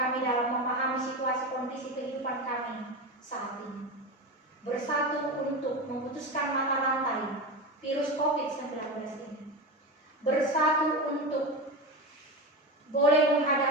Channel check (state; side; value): normal; both; correlation 0.22